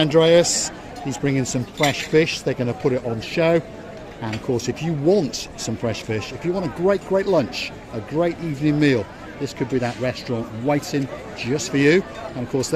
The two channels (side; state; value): both; identical; correlation 1.00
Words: He's bringing some fresh fish. They're going to put it on show. And of course, if you want some fresh fish, if you want a great, great lunch, a great evening meal, this could be that restaurant waiting just for you. And of course,